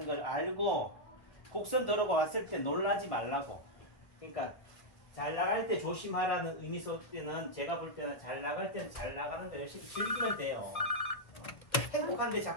걸 알고 곡선도로가 왔을 때 놀라지 말라고. 그러니까 잘 나갈 때 조심하라는 의미 속에는 제가 볼 때는 잘 나갈 때는 잘 나가는 거 열심히 즐기면 돼요. 행복한데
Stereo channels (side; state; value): right; late; 1.8 ms